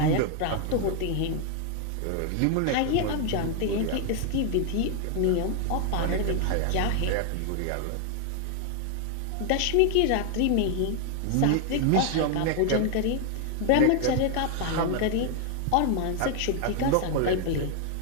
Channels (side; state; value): both; different; correlation 0.00